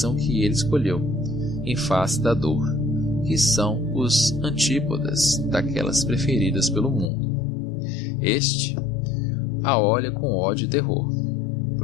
que ele escolheu em face da dor, que são os antípodas daquelas preferidas pelo mundo. Este a olha com ódio e terror,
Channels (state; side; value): drops out; right; at 7.1 s